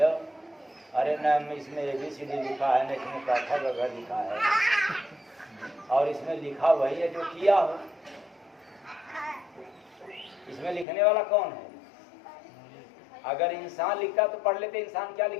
अरे न इसमें ABCD लिखा है, न इसमें काठा वगैरह लिखा है, और इसमें लिखा वही है जो किया हो। इसमें लिखने वाला कौन है? अगर इंसान लिखता तो पढ़ लेते। इंसान क्या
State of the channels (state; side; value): drops out; right; at 10.9 s